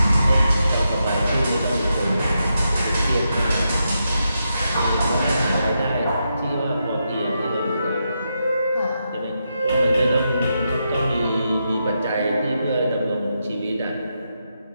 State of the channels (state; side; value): inverted; both; correlation -0.84